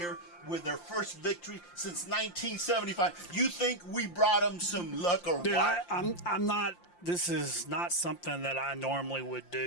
with their first victory since 1975. You think we brought them some luck or Dude, what? I'm not. This is not something that I normally would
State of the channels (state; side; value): late; right; 5.7 ms